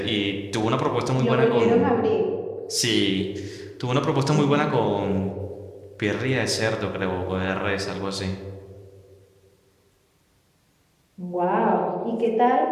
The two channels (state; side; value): identical; both; correlation 1.00